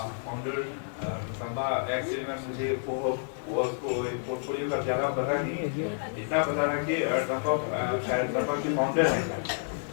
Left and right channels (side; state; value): right; silent; digital silence